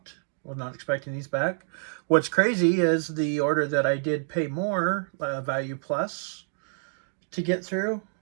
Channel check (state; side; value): silent; left; digital silence